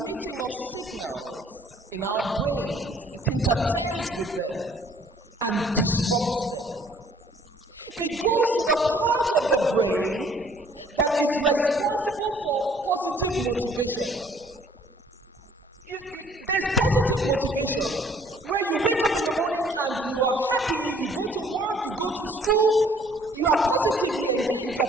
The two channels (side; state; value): both; normal; correlation 0.58